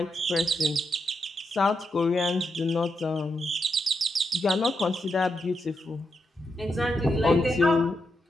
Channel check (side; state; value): both; normal; correlation 0.83